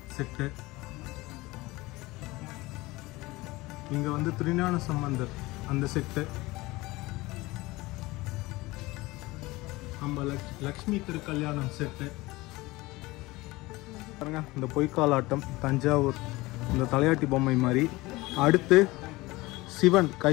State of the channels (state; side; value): quieter; right; 20.8 dB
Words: செட்டு. இங்கே வந்து திருஞான சம்பந்தர் அந்த செட்டு. நம்ம லக்ஷ்மி திருக்கல்யாணம் செட்டு பாருங்க. இந்த பொய்க்காலாட்டம், தஞ்சாவூர் இந்த தலையாட்டி பொம்மை மாதிரி. அடுத்து சிவன்